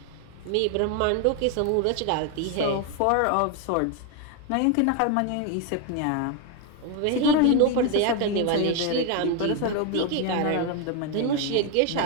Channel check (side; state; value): both; different; correlation 0.01